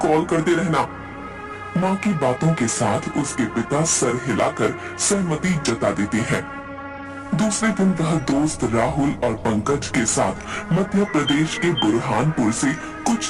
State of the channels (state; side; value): identical; both; correlation 1.00